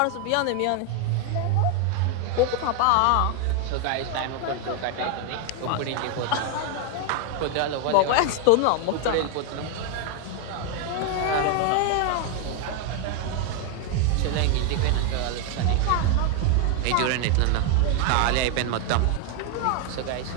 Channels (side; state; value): both; different; correlation 0.00